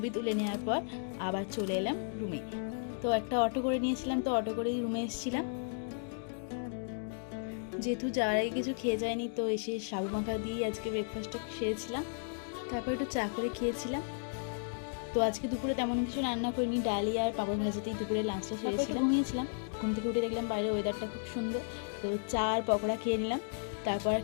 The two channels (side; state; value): right; silent; digital silence